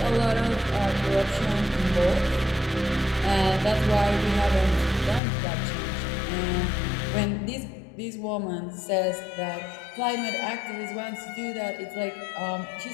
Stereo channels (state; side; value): drops out; right; at 5.2 s